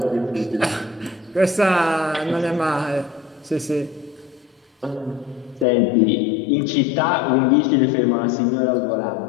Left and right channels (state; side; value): drops out; right; at 5.7 s